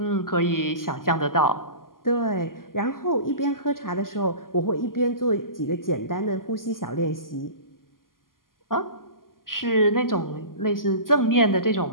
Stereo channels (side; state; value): right; late; 0.91 ms